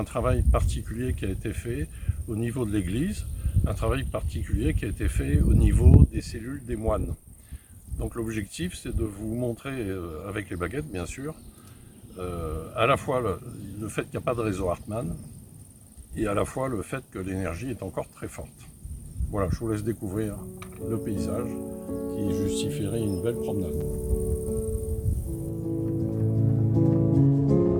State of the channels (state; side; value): identical; both; correlation 1.00